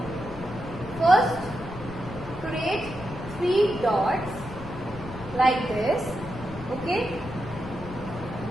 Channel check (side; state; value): left; noise; rumble, 12 dB below the sound